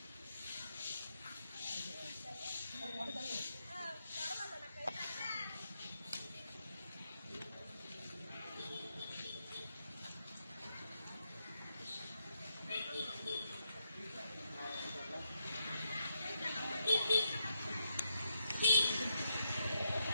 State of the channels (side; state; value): both; inverted; correlation -0.81